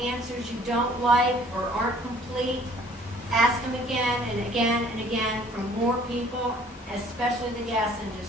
you don't like or aren't complete, ask them again and again and again from more people, especially the gas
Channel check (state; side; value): normal; both; correlation 0.56